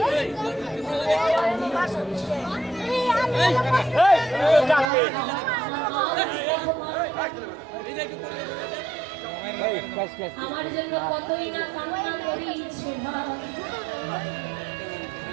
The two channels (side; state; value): left; drops out; at 4.9 s